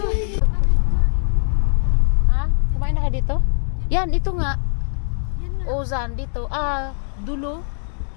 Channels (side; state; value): right; silent; digital silence